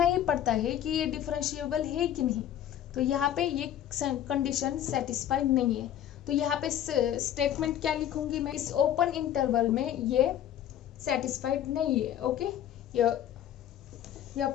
ही पड़ता है कि ये डिफरेंशिएबल है कि नहीं। तो यहाँ पे ये कंडीशन सेटिस्फाइड नहीं है, तो यहाँ पे स्टेटमेंट क्या लिखूंगी मैं, इस ओपन इंटरवल में ये सेटिस्फाइड नहीं है। Okay,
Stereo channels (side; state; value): right; quieter; 10.9 dB